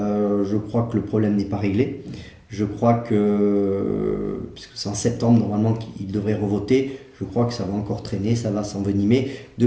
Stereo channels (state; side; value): identical; both; correlation 1.00